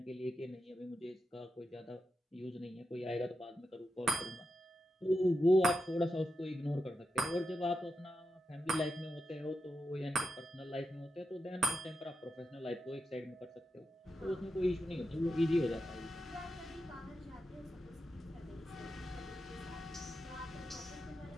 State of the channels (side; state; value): both; normal; correlation 0.86